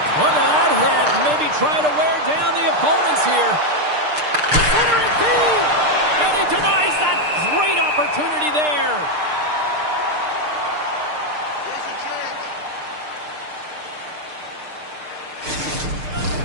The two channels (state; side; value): late; left; 6.6 ms